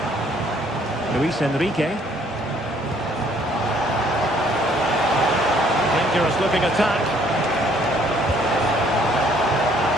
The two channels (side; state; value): both; normal; correlation 0.63